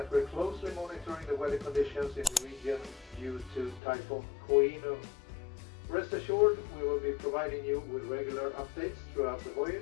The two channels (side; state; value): right; drops out; at 3.8 s